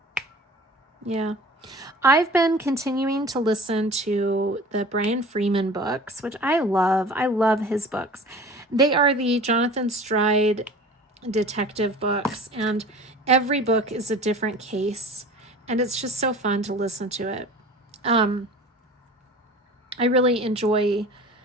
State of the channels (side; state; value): both; normal; correlation 0.41